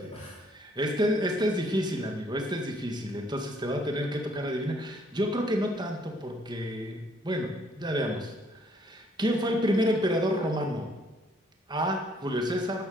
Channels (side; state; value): both; normal; correlation 0.65